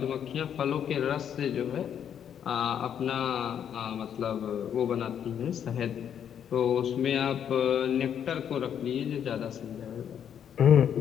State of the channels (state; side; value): quieter; right; 8.8 dB